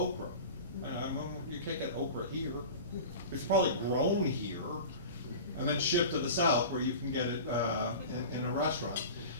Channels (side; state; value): both; inverted; correlation -0.34